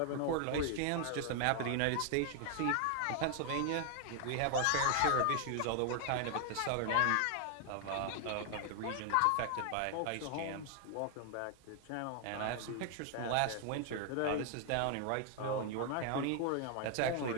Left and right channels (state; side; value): different; both; correlation 0.00